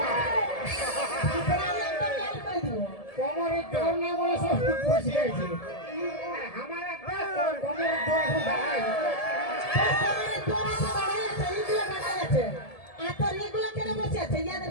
প্রায় একটা গাল করে দিব। কোমরের জোর নেই বলে সব বসে আছে। আমার একটা কোমরের জোর এখন দাঁড়ায়। কমরের জোর আছে, দাঁড়ায় আছে, এইগুলো দাঁড়ায় আছে। আর তোর এগুলো কেন বসে আছে?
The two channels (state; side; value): late; right; 1.7 ms